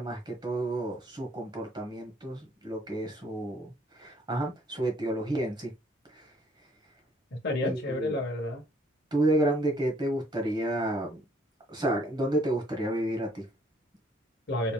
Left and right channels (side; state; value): both; normal; correlation 0.62